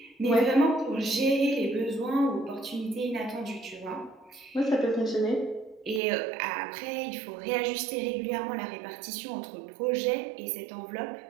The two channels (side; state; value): left; drops out; at 6.0 s